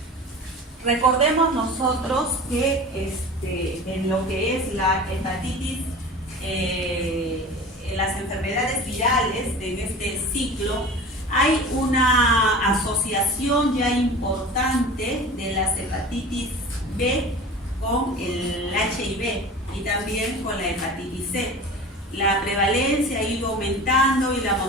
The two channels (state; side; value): normal; both; correlation 0.37